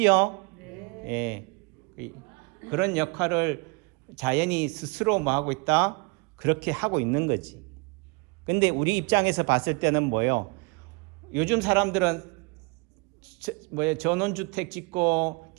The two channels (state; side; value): quieter; left; 29.8 dB